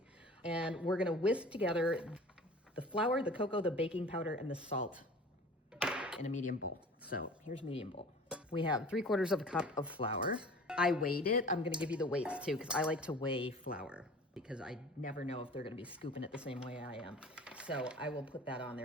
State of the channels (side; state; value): both; normal; correlation 0.43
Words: And we're gonna whisk together the flour, the cocoa, the baking powder, and the salt in a medium bowl. So here's medium bowl. We have 3/4 of a cup of flour. I weighed it. I'm gonna give you the weights too, because I like to weigh flour because I never know if they're gonna be scooping it the same way I am. So I will put that on